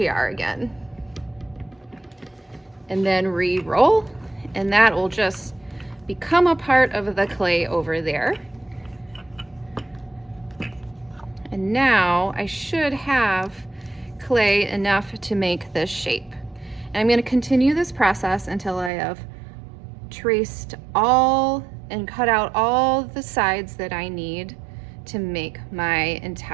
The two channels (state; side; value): drops out; left; at 18.9 s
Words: again. And then re-roll, and that will just become a part of the clay over there. And now I should have clay enough to make this shape. And I'm going to continue this process until I have traced all and cut out all the sides that I need to make my